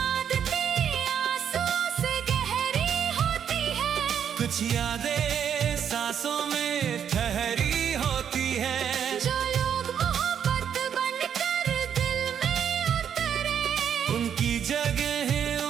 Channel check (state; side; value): quieter; left; 8.4 dB